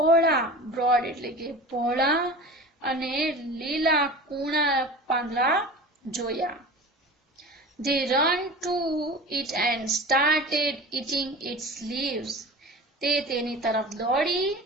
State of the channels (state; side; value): normal; both; correlation 0.35